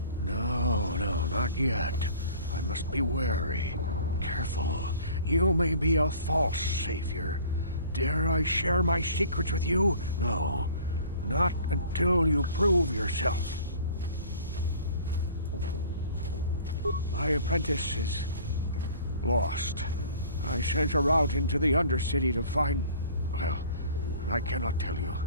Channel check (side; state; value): both; inverted; correlation -0.48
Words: not yet. I must be wary. Careful. You may be a false savior. Dare I share my secrets with you? No, not until you prove yourself. My apprentice is lost. I sent her out into the Undercity to find... Well, I cannot tell you.